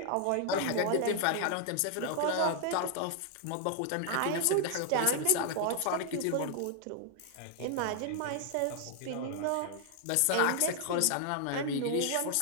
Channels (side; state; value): both; different; correlation 0.00